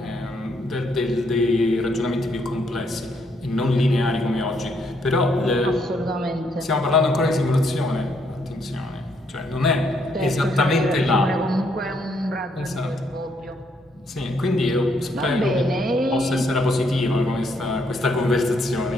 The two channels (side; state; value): both; normal; correlation 0.72